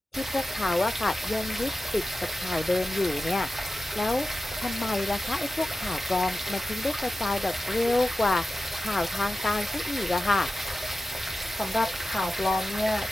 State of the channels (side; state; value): both; normal; correlation 0.94